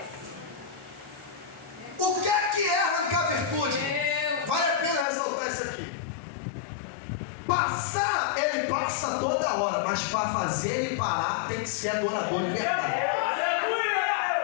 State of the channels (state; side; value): drops out; right; at 5.1 s